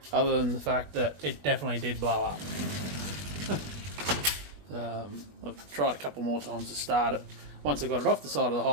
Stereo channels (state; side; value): late; left; 21 ms